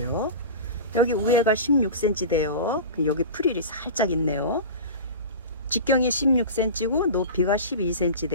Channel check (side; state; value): both; inverted; correlation -0.31